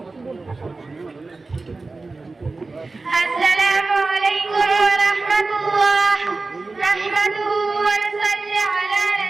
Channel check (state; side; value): quieter; left; 3.6 dB